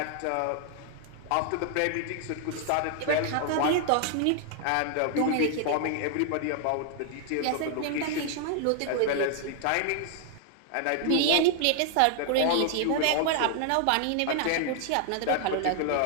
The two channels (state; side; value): different; both; correlation 0.00